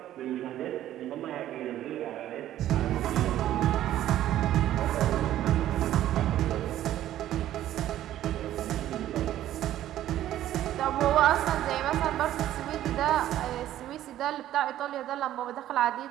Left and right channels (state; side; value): quieter; left; 12.8 dB